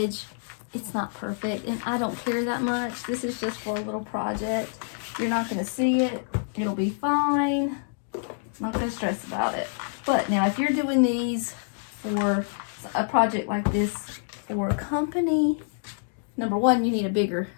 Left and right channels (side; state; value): right; silent; digital silence